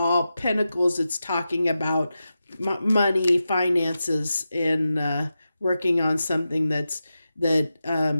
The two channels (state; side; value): inverted; both; correlation -0.91